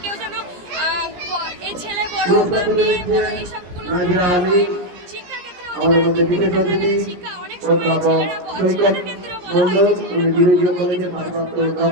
কেউ যেন এই ছেলে বড় বা মেয়ে বড় এইসবগুলো না হয়। শিক্ষার ক্ষেত্রে অধিকার, শিক্ষা অনেক সময় ছেলেদের ক্ষেত্রেও বলা হয়েছে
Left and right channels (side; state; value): left; late; 17 ms